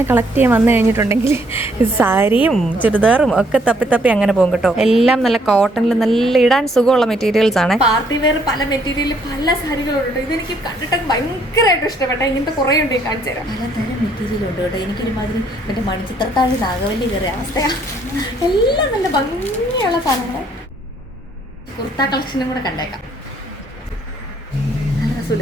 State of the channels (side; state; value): both; normal; correlation 0.67